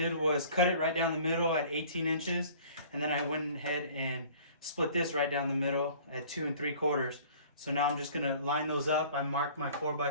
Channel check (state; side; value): inverted; both; correlation -0.49